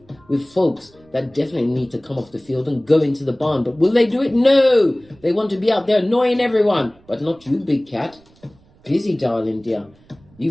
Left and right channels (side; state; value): right; noise; rumble, 29 dB below the sound